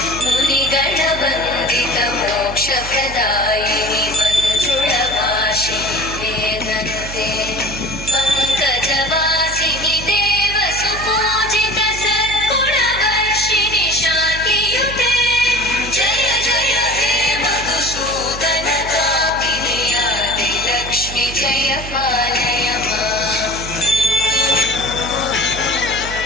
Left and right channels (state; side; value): noise; right; hum, 11 dB below the sound